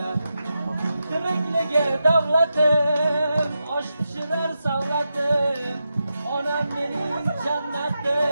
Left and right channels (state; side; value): inverted; both; correlation -0.88